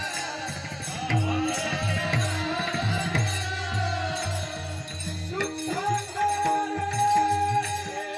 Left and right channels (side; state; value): both; identical; correlation 1.00